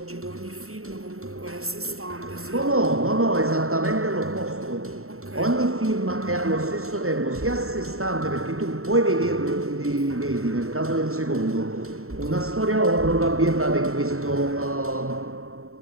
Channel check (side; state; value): left; late; 0.63 ms